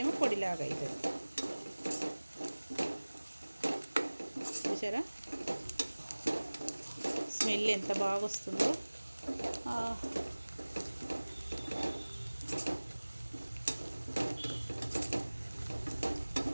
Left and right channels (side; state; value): both; inverted; correlation -1.00